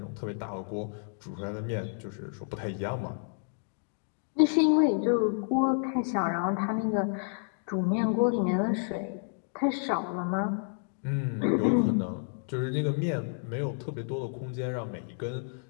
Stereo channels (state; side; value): silent; right; digital silence